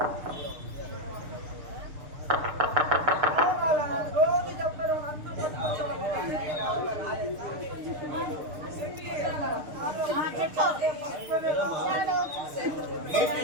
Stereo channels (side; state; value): left; late; 6.7 ms